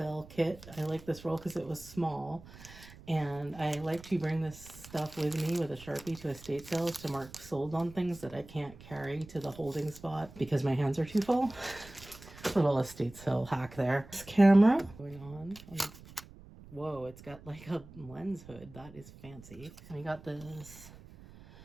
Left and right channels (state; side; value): noise; right; rumble, 19 dB below the sound